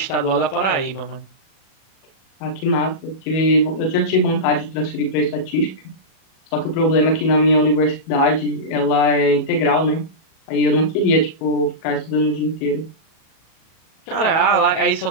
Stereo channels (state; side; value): late; right; 37 ms